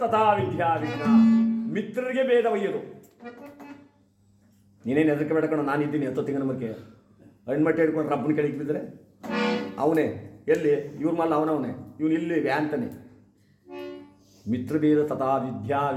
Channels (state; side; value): identical; both; correlation 1.00